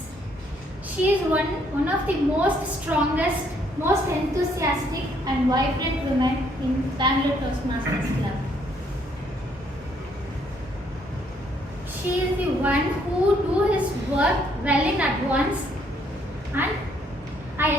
She is one of the most strongest, most enthusiastic and vibrant women in Bangalore Toastmasters Club. She is the one who do his work well in advance, and I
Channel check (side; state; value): both; normal; correlation 0.68